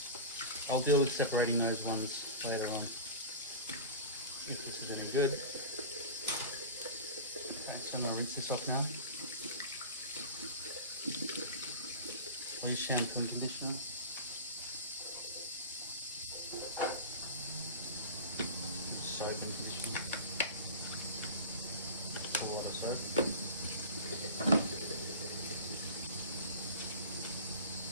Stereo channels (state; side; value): inverted; both; correlation -0.31